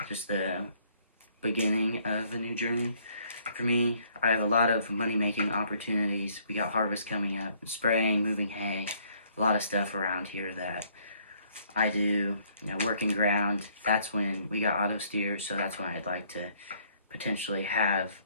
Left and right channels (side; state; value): both; inverted; correlation -0.64